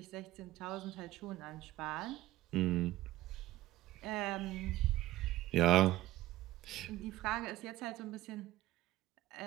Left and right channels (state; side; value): quieter; left; 16.1 dB